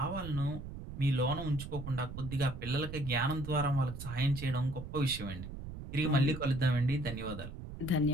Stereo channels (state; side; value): noise; right; rumble, 10 dB below the sound